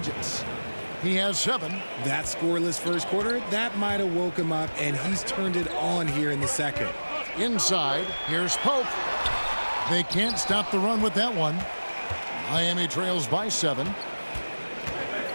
He has 7. That scoreless first quarter, that might have woke him up, and he's turned it on here in the second. Inside, here's Pope. They can't stop the run with that one. Miami trails by 7.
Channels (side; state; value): both; inverted; correlation -1.00